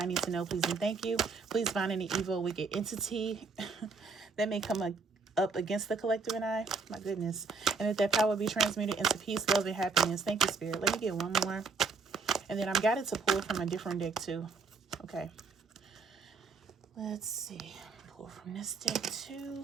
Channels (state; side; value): quieter; left; 4.5 dB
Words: need to know, please and thank you. Please bind any evil, wicked entity that may come up against the collective and I. My goodness. And that power be transmuted into peace, love, and happiness. Thank you, Spirit. Let me get one more. And then I'm guided to pull from a different deck too. Okay. Let's see. Pull from this deck